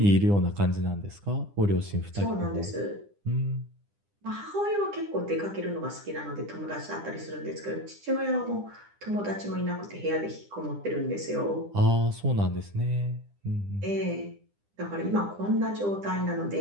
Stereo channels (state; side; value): late; left; 9.9 ms